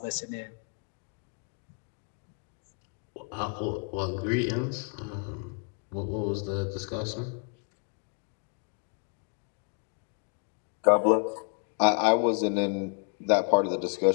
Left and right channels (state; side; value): quieter; right; 38.3 dB